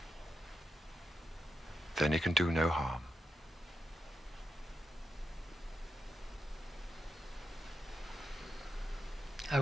Then he can do no harm. I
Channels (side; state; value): both; normal; correlation 0.88